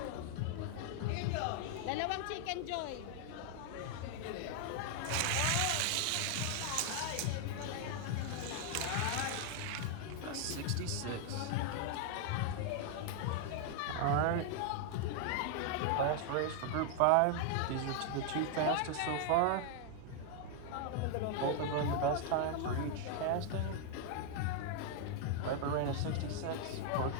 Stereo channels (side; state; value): both; different; correlation 0.00